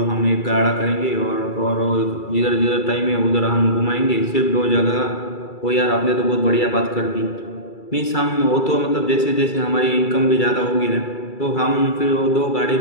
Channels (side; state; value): right; late; 2.3 ms